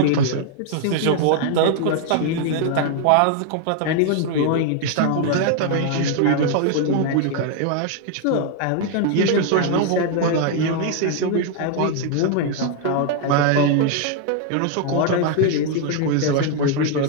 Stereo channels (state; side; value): different; both; correlation 0.00